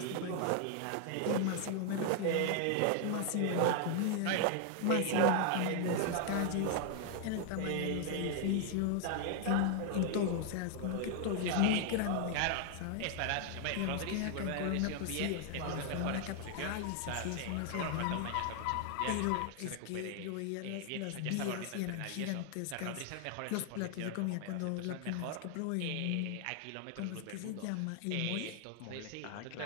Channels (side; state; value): both; different; correlation 0.00